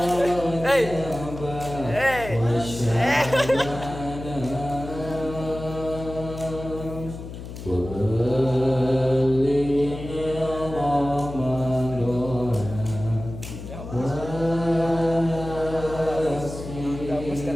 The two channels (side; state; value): left; noise; hum, 11 dB below the sound